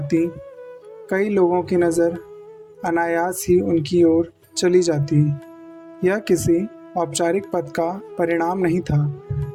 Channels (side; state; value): both; identical; correlation 1.00